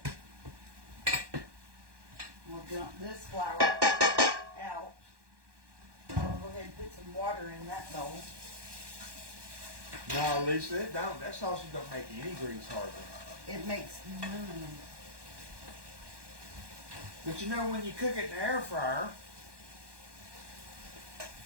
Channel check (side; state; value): left; late; 1.1 ms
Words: We'll dump this flour out. I'll go ahead and put some water in that bowl. No, Lisa, it don't. That sausage don't make any grease hardly. It makes none. But you know, when you cook it in the air fryer,